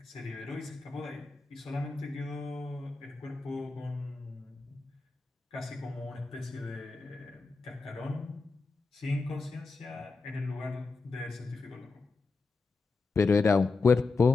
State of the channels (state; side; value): quieter; right; 4.0 dB